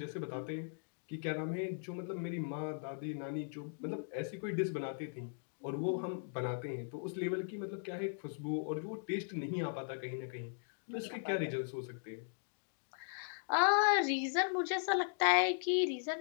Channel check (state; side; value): silent; right; digital silence